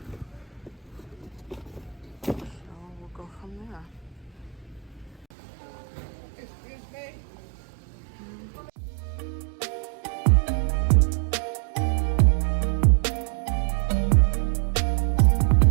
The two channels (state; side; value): drops out; left; at 5.2 s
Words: So we'll go from there. Excuse me?